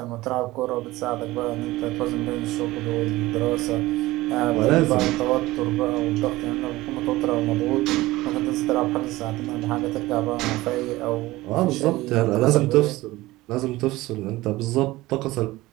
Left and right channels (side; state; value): left; quieter; 18.6 dB